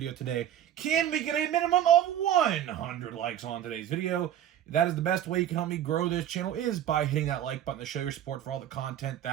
today. Can we get a minimum of 100 likes on today's video? That is the best way you can help me grow this channel, is by hitting that like button to show your support for all the content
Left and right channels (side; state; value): left; quieter; 10.9 dB